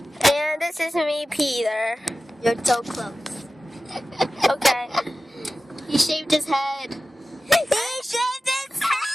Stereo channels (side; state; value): both; normal; correlation 0.95